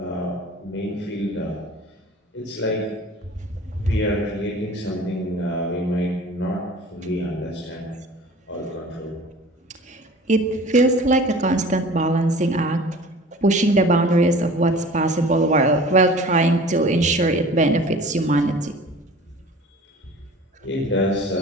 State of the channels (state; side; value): normal; both; correlation 0.43